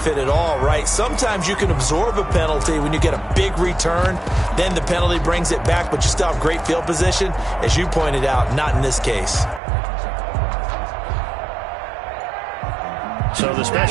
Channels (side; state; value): left; drops out; at 9.6 s